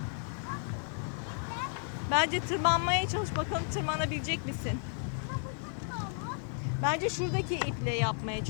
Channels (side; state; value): right; silent; 56 dB below the other